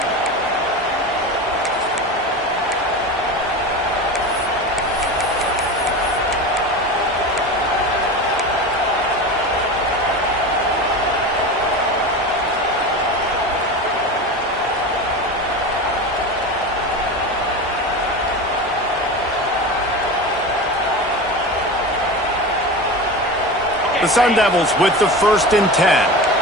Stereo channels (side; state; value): both; normal; correlation 0.27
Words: The Sun Devils with the 1st and 10.